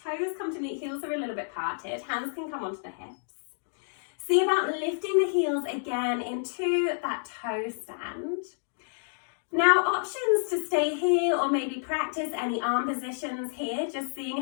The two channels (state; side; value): silent; right; digital silence